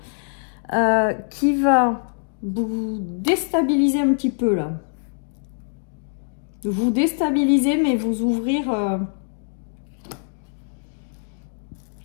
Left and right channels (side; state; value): right; silent; digital silence